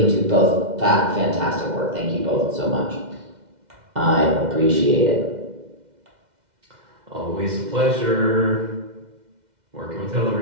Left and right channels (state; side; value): late; left; 2.1 ms